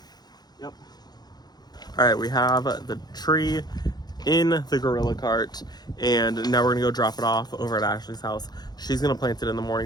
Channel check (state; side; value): late; right; 0.20 ms